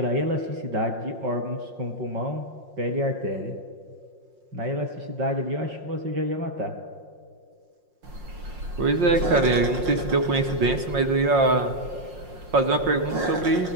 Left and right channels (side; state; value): left; late; 5.6 ms